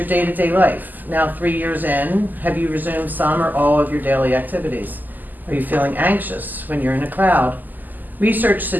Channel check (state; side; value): late; left; 0.085 ms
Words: day-to-day life? Now 3 years in, have you resumed some or all of your daily activities? Are you feeling anxious when you're in a crowd? Research